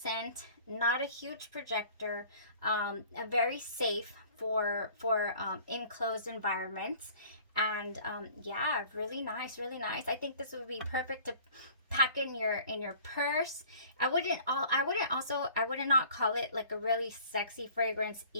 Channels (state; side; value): inverted; both; correlation -0.49